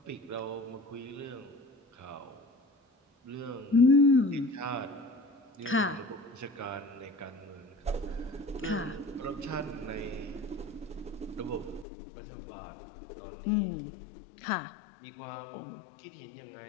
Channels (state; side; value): drops out; right; at 11.9 s